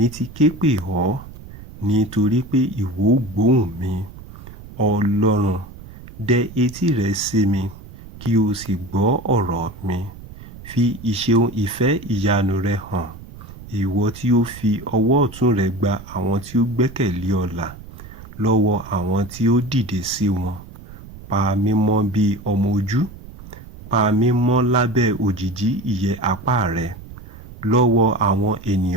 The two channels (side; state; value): right; noise; rumble, 16 dB below the sound